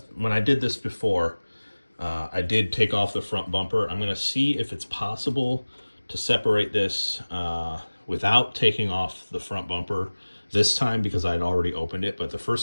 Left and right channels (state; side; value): inverted; both; correlation -1.00